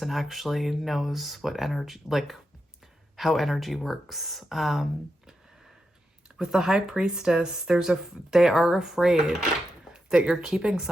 actually knows what energy, like how energy works. With the High Priestess, they are afraid that you're keeping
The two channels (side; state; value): both; normal; correlation 0.87